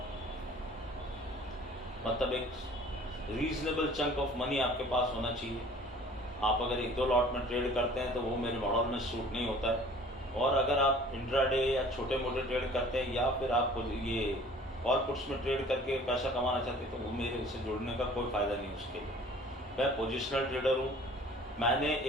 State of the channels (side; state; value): both; normal; correlation 0.50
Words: मतलब एक रीजनेबल चंक ऑफ मनी आपके पास होना चाहिए। आप अगर 1-2 लॉट में ट्रेड करते हैं तो वो मेरे मॉडल में सूट नहीं होता है। और अगर आप इंट्राडे या छोटे मोटे ट्रेड करते हैं या फिर आप ये कॉल पुट्स में ट्रेड करके पैसा कमाना चाहते हैं तो वो मेरे से जुड़ने का कोई फ़ायदा नहीं उसके लिए। मैं पोजिशनल ट्रेडर हूँ। मैंने